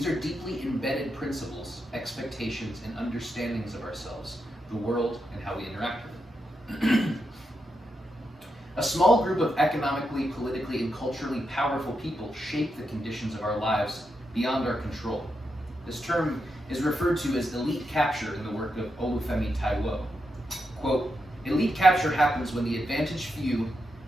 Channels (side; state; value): both; normal; correlation 0.85